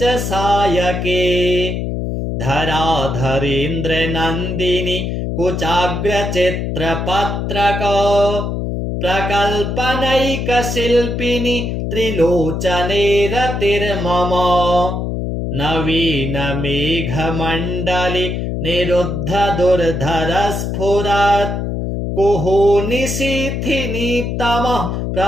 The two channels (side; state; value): left; noise; hum, 2 dB below the sound